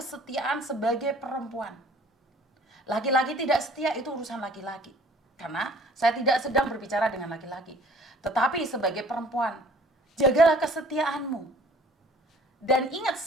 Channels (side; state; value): both; normal; correlation 0.52